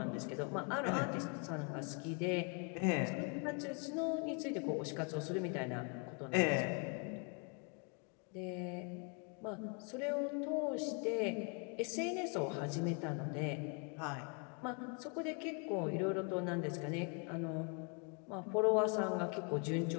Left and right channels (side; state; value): right; quieter; 36.4 dB